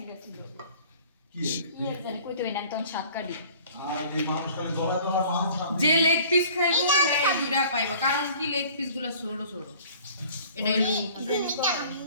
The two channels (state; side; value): inverted; both; correlation -0.50